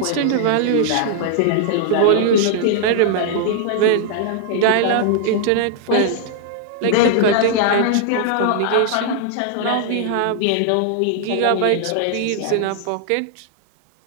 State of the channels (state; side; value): different; both; correlation -0.01